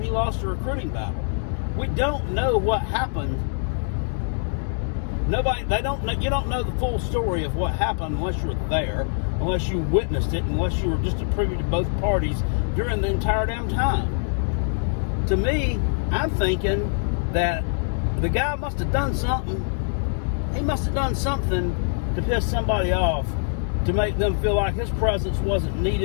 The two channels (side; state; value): right; silent; digital silence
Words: he lost a recruiting battle. We don't know what happened. You don't know the full story of what happened unless you were there, unless you witnessed it, unless you were just a privy to both parties during the entire damn time. To me, I'm thinking that the guy must have done something. He must have done something to piss somebody off, to make them feel like his presence wasn't